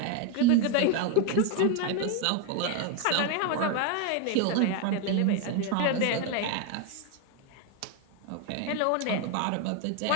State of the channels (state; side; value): different; both; correlation 0.01